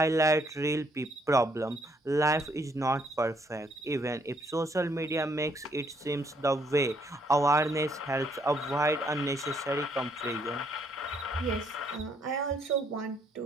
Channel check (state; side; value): normal; both; correlation 0.69